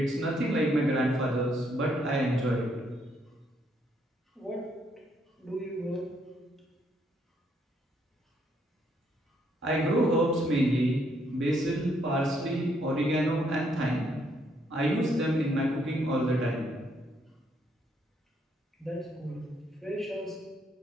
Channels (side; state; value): both; normal; correlation 0.72